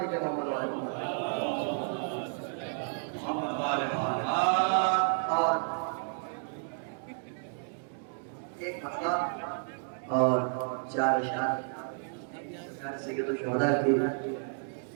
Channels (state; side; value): silent; left; 57 dB below the other